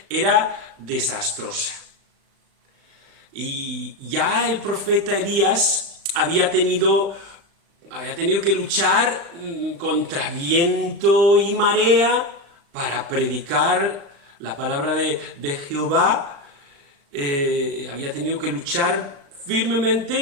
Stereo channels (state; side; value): late; left; 36 ms